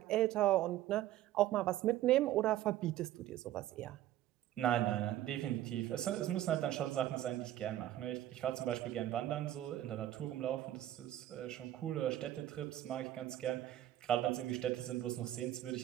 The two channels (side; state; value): left; quieter; 13.4 dB